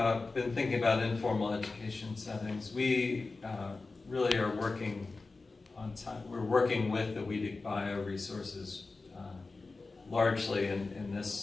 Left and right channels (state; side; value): quieter; right; 3.7 dB